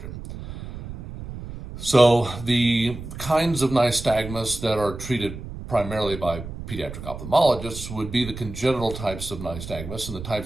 So the kinds of nystagmus that are treated primarily by pediatric ophthalmologists would be the congenital types of nystagmus and the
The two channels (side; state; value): right; noise; rumble, 10 dB below the sound